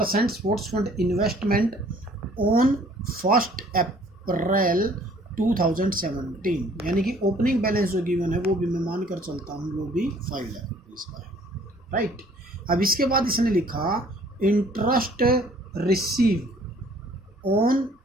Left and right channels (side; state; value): both; normal; correlation 0.57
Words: स्पोर्ट्स फंड इन्वेस्टमेंट ऑन 1 अप्रैल 2017, यानी कि ओपनिंग बैलेंस जो गिवन है वो भी मैं मान कर चलता हूँ वो भी 5 लाख रुपीज़ का है, राइट। अब इसके बाद इसने लिखा interest receive on